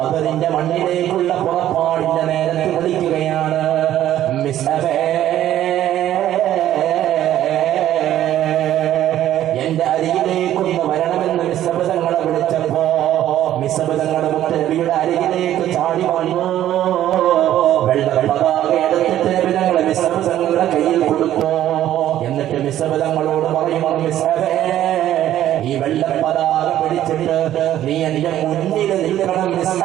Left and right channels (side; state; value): left; quieter; 12.4 dB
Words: മണ്ണിലേക്കുള്ള പുറപ്പാടിന്റെ നേരത്തെ നിൽക്കുകയാണ്. എന്റെ അരികിലേക്കൊന്ന് വരണമെന്ന് മിസ്ബിനെ വിളിച്ചപ്പോ മിസ്ബിനെ മുത്തുനബിയുടെ അരികിലേക്ക് ചാടി വന്നു. വെള്ള പതാക എടുത്തിട്ട് നബിയുടെ മിസ്ബിനെ കയ്യിൽ കൊടുത്തു. എന്നിട്ട് മിസ്ബിനോട് പറയുന്നു, മിസ്ബേ ഈ വെള്ള പതാക പിടിച്ചിട്ട് നീ എന്റെ മുന്നിൽ നിൽക്കണം മിസ്ബേ